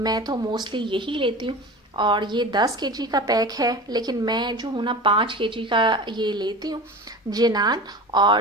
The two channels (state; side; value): normal; both; correlation 0.34